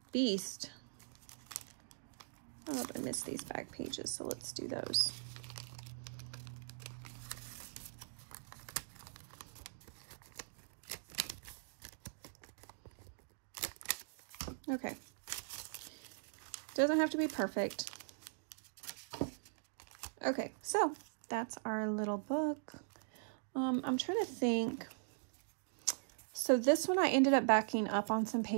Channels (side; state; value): left; silent; digital silence